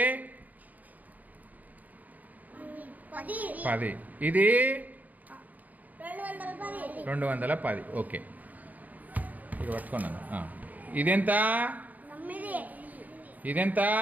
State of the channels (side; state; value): left; late; 0.079 ms